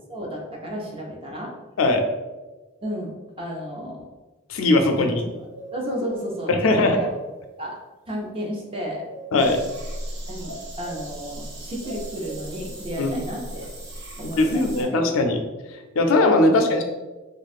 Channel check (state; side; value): normal; both; correlation 0.25